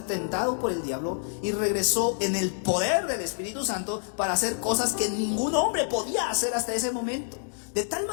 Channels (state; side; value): silent; right; digital silence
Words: tentado por el diablo y regresó en el poder del Espíritu Santo para hacer cosas que ningún hombre podía hacer hasta ese momento. De tal